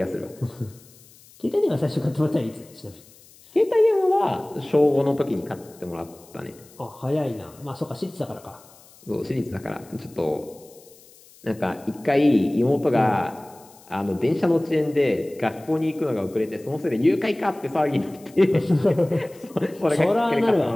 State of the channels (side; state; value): left; noise; hiss, 25 dB below the sound